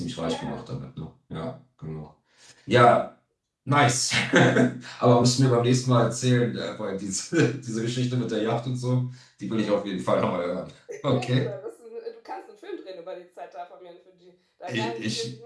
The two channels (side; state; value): both; identical; correlation 1.00